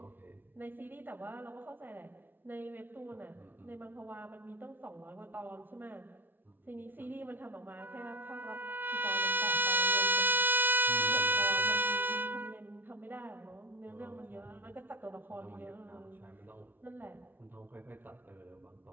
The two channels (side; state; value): left; late; 0.094 ms